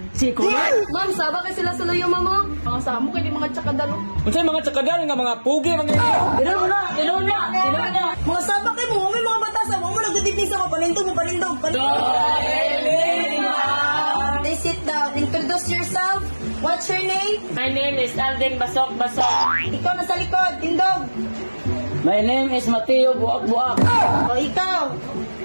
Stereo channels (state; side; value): inverted; both; correlation -1.00